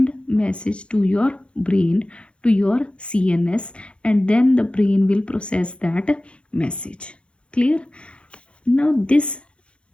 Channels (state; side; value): late; right; 0.058 ms